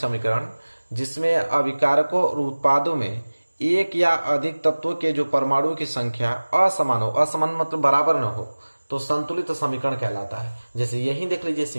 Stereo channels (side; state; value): both; inverted; correlation -1.00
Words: जिसमें अभिकारकों और उत्पादों में एक या अधिक तत्वों के जो परमाणुओं की संख्या असमान हो, असमान मतलब बराबर न हो, तो संतुलित समीकरण कहलाता है। जैसे यही देख लीजिए,